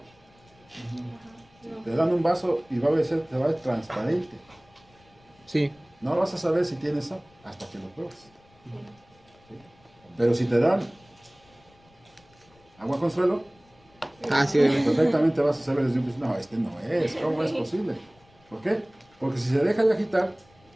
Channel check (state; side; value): noise; left; rumble, 30 dB below the sound